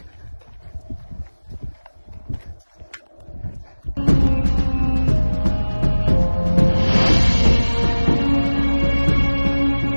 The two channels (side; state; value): both; inverted; correlation -1.00